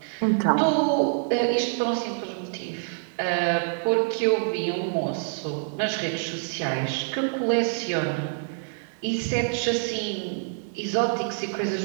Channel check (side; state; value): left; silent; digital silence